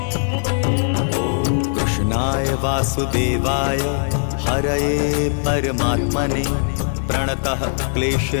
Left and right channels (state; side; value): silent; right; digital silence